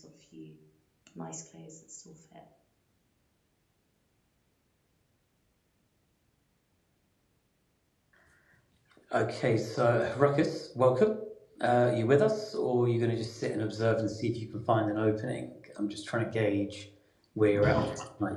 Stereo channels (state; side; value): identical; both; correlation 1.00